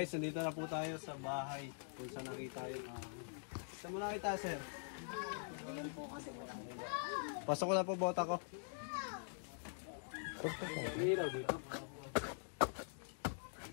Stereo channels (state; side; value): silent; right; digital silence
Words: nandito na po tayo sa bahay kung saan nakita yung saan mo nakita sir? Pasok ko na po bota ko. Ilaw dito.